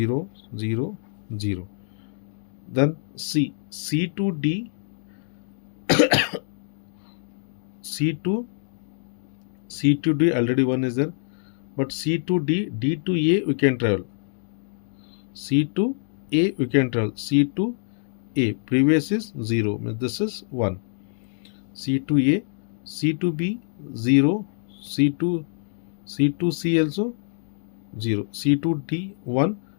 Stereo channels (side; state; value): right; silent; digital silence